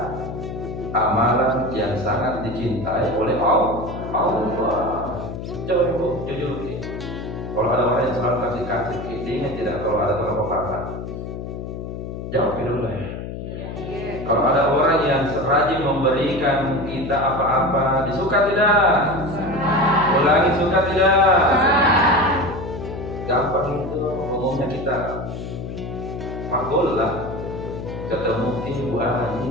amalan yang sangat dicintai oleh Allah. Coba ibu jujur, kalau ada orang yang selalu kasih diingat tidak kalau ada tolong apa? Jawab dulu lah ya. Kalau ada orang yang rajin memberikan kita apa-apa, disuka tidak? Ulangi, suka tidak? Gampang itu, umumnya kita makbul lah. Ketemu Ibu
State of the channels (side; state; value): left; noise; hum, 8 dB below the sound